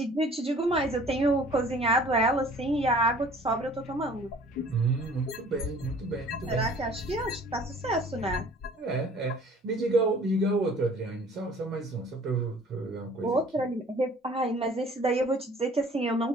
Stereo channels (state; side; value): normal; both; correlation 0.51